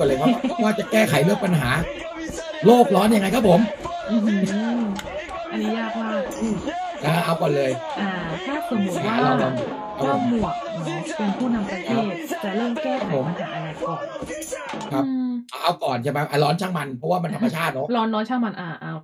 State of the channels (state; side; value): identical; both; correlation 1.00